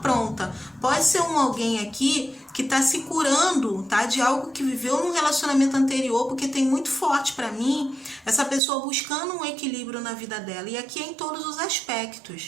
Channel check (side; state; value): left; drops out; at 8.6 s